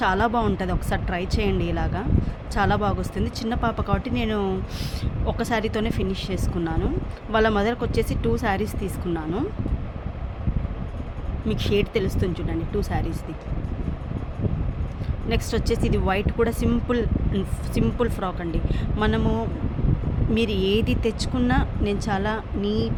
చాలా బాగుంటుంది, ఒకసారి ట్రై చేయండి. ఇలాగా చాలా బాగా వస్తుంది. చిన్న పాప కాబట్టి నేను ఒక శారీతోనే ఫినిష్ చేసుకున్నాను. వాళ్ళ మదర్కి వచ్చేసి 2 శారీస్ తీసుకున్నాను. మీకు షేడ్ తెలుస్తుంది చూడండి, 2 శారీస్ది. నెక్స్ట్ వచ్చేసి ఇది వైట్ కూడా సింపుల్ ఫ్రాక్ అండి. మీరు ఏది తెచ్చుకున్నా నేను చాలా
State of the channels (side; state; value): both; identical; correlation 1.00